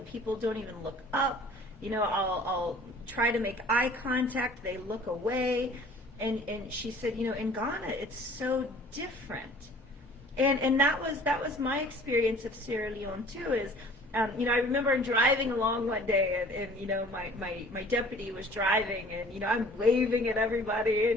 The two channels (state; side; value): normal; both; correlation 0.50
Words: people don't even look up. I'll try to make eye contact, they look away. And she said, in Ghana it's so different. And that was my experience of Sierra Leone too. Is I remember driving along one day, and my deputy was driving, and I'm waving at everybody,